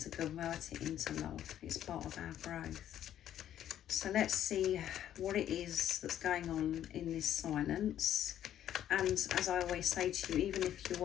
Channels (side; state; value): right; quieter; 11.1 dB